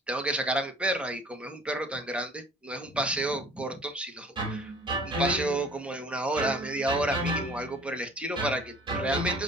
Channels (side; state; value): both; normal; correlation 0.50